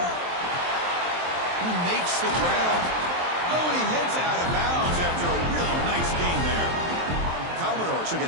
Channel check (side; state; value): left; late; 23 ms